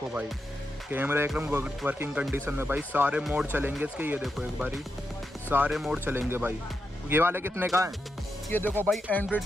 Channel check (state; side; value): normal; both; correlation 0.86